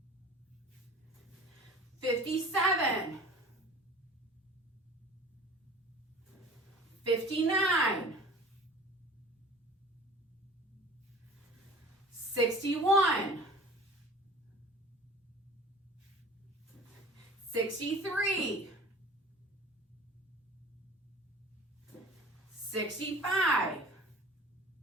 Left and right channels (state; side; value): normal; both; correlation 0.43